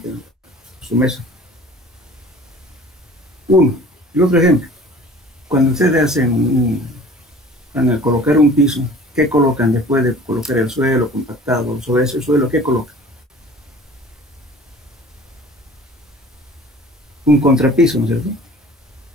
en su mesa. Uno. Y otro ejemplo. Cuando ustedes van a colocar un piso, ¿qué colocan después de colocar el suelo compactado? Sobre ese suelo, ¿qué colocan? Un contrapiso, ¿no es cierto?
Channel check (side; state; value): both; normal; correlation 0.46